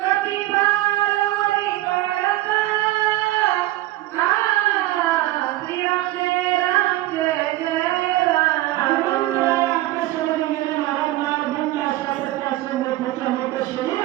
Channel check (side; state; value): left; quieter; 16.6 dB